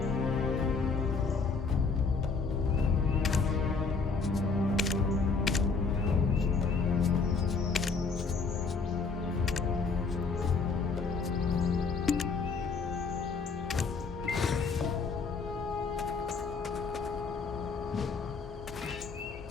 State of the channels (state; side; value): quieter; right; 4.7 dB